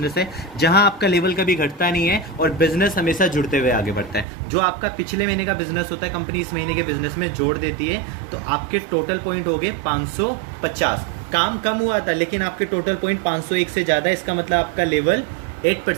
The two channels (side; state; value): left; drops out; at 4.2 s